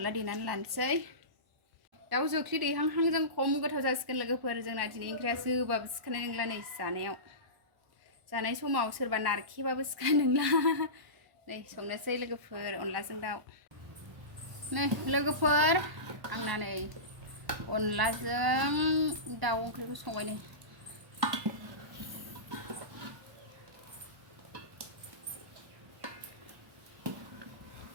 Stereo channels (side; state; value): left; late; 1.0 ms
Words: देनानै लानोसै दाउ जोख्लि दैहांहांजों खम गोथाव जासिगोन लोगोफोर जोंना दिनै ओंख्रिया जोबाबो सिखानाय नंला नै जानाय समाव सोरबा नारखेबाबो सिखानाय नंला नै संनोसै लोगोफोर अनलाजों दाउ नै लोगोफोर आंना नै अनलाजों दाउ ओंख्रिखौ संबाय नै